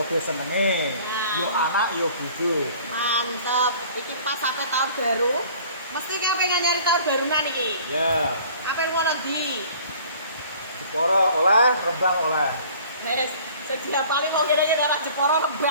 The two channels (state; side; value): inverted; both; correlation -0.50